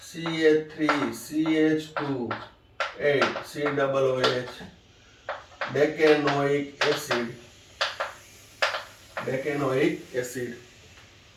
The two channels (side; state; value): both; identical; correlation 1.00